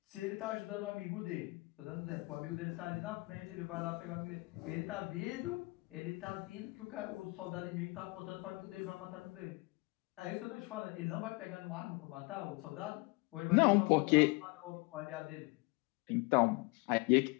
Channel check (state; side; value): quieter; right; 26.0 dB